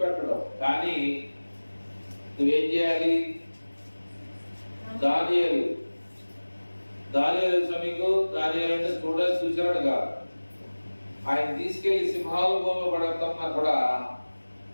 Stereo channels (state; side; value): inverted; both; correlation -1.00